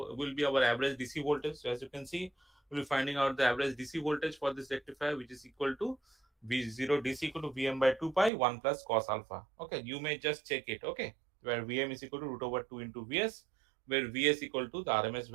be our average DC voltage. So as you can see, we'll be finding out the average DC voltage for this rectifier, which is equal to V0 DC equal to Vm by 2 pi 1 plus cos alpha. Okay, you may just check it. Okay, where Vm is equal to root over 2 into Vs, where Vs equal to the RMS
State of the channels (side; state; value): left; drops out; at 8.3 s